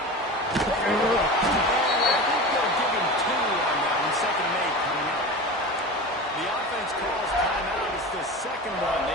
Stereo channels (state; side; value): normal; both; correlation 0.30